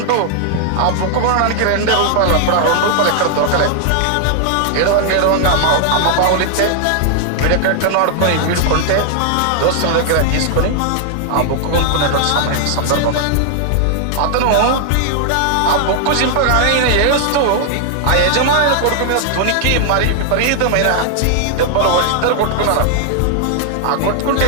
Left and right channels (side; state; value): both; different; correlation 0.00